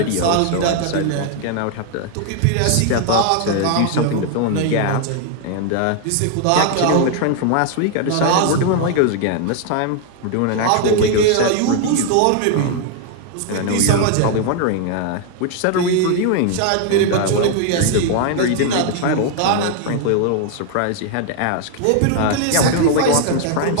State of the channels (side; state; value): both; different; correlation 0.00